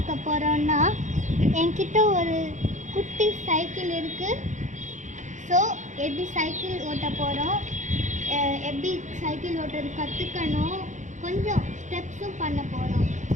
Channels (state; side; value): late; left; 0.35 ms